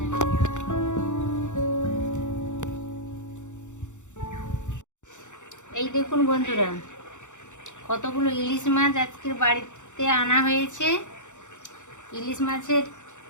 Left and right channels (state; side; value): late; right; 0.85 ms